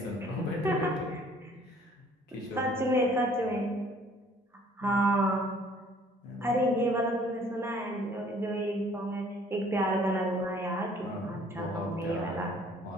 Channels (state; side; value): normal; both; correlation 0.57